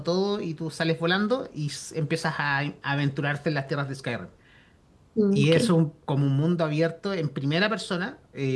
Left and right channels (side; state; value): both; identical; correlation 1.00